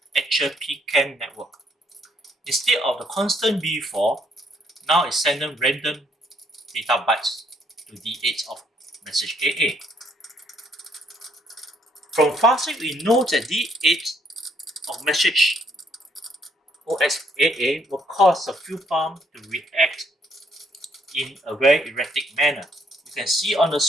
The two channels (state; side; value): normal; both; correlation 0.69